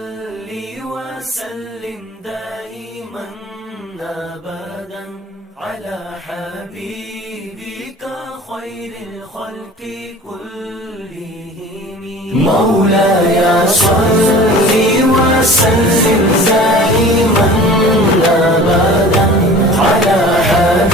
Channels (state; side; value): normal; both; correlation 0.42